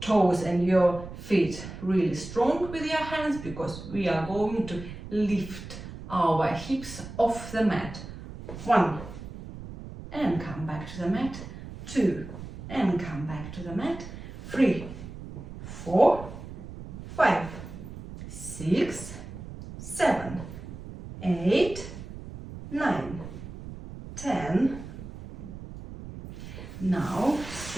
and your feet really strong with your hands, because we are going to lift our hips off the mat. 1, and come back to the mat. 2, and come back to the mat. 3, 4, 5, 6, 7, 8, 9, 10. Now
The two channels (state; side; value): noise; right; rumble, 12 dB below the sound